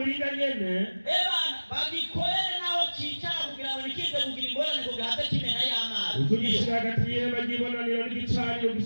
nyene Ebana bagikorere naho cicara kugira ngo nikize kugira ingorane kugira habe kimena y'amazi. uzugishira hagati y'ihema ry'ibonaniro n'igicaniro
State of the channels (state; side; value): inverted; both; correlation -1.00